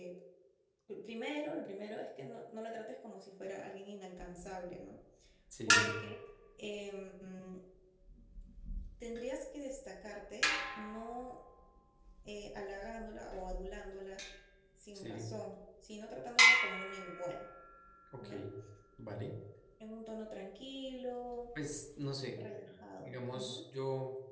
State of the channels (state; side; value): identical; both; correlation 1.00